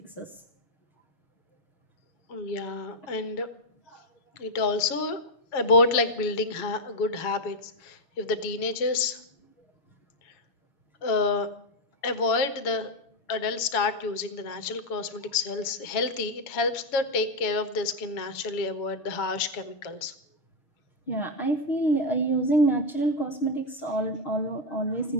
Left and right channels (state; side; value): late; right; 7.2 ms